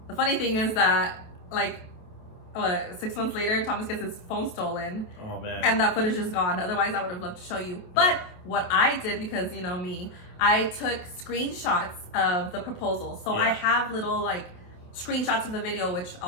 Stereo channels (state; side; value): late; right; 27 ms